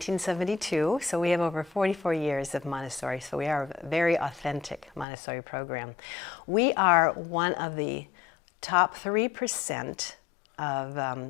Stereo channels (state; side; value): drops out; right; at 5.1 s